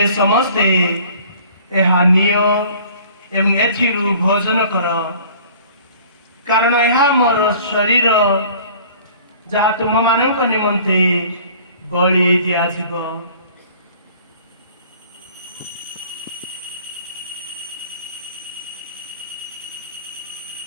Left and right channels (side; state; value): both; inverted; correlation -0.50